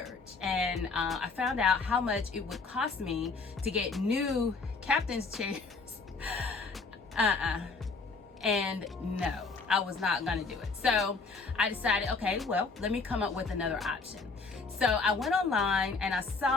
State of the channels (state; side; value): quieter; right; 4.2 dB